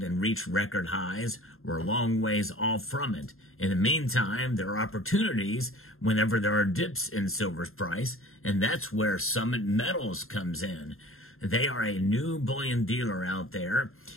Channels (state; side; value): late; right; 0.61 ms